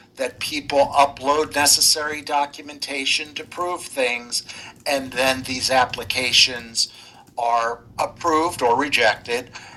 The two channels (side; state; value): both; identical; correlation 1.00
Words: that people upload necessary documentation to prove things, and then these applications are approved or rejected.